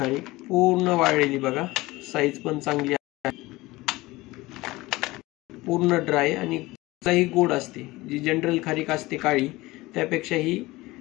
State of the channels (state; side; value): quieter; right; 20.1 dB